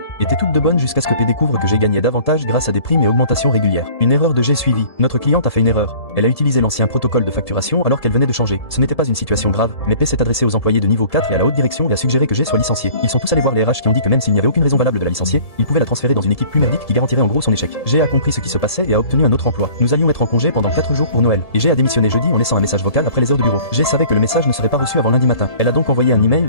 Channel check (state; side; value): late; right; 1.7 ms